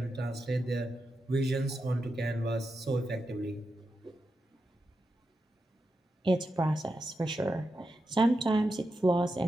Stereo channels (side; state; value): both; normal; correlation 0.88